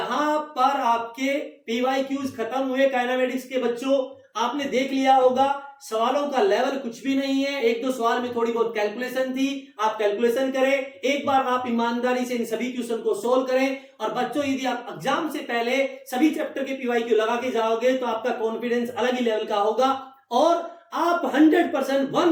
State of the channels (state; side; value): identical; both; correlation 1.00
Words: पर आपके PYQs खत्म हुए काइनेमेटिक्स के बच्चों। आपने देख लिया होगा सवालों का लेवल कुछ भी नहीं है, एक दो सवाल में थोड़ी बहुत कैलकुलेशन थी, आप कैलकुलेशन करें, एक बार आप ईमानदारी से इन सभी क्वेश्चन को सोल्व करें। और बच्चों यदि आप एग्जाम से पहले सभी चैप्टर के पीवाईक्यू लगा के जाओगे तो आपका कॉन्फिडेंस अलग ही लेवल का होगा और आप 100%